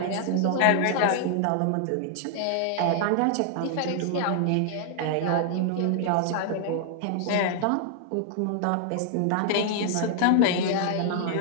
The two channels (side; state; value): both; different; correlation 0.00